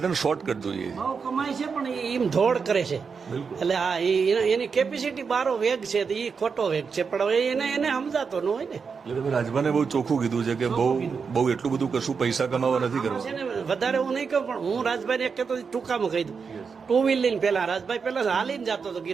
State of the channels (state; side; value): quieter; left; 5.6 dB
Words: શોર્ટકટ જોઈએ છે. બહુ કમાય છે પણ એમ ધોડ કરે છે. એટલે આ એની કેપેસિટી બારો વેગ છે, એ ખોટો વેગ છે, પણ હવે એને સમજાતો ન હોય ને. એટલે તમે રાજભાને બહુ ચોખ્ખું કીધું છે કે બહુ એટલું બધું કશું પૈસા કમાવા નથી કરવા છે ને. વધારે હું નહીં કહું, પણ હું રાજભાઈ ને એક કહેતો ટૂંકામાં કહી દઉં. ટુ વ્હીલ લઈને પેલા રાજભાઈ પેલા હાલીને જતો હતો